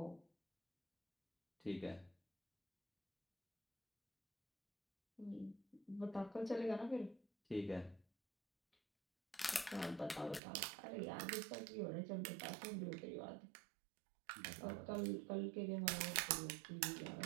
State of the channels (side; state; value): left; drops out; at 10.4 s